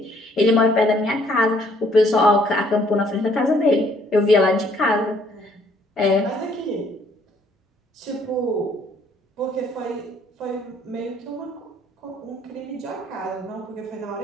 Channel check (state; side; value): normal; both; correlation 0.63